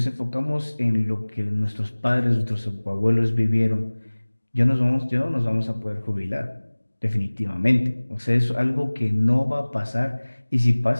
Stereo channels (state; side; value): inverted; both; correlation -1.00